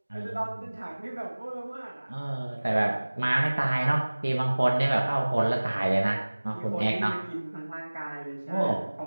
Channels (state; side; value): inverted; both; correlation -1.00